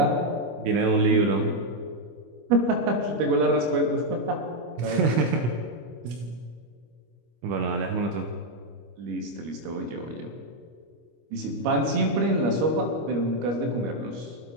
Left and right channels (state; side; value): late; left; 25 ms